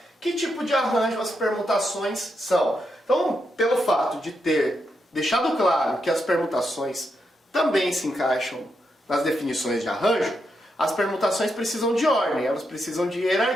Que tipo de arranjo as permutações são? Então, pelo fato de ter deixado claro que as permutações também se encaixam nas definições de arranjo, as permutações precisam de ordem, elas precisam de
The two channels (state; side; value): normal; both; correlation 0.83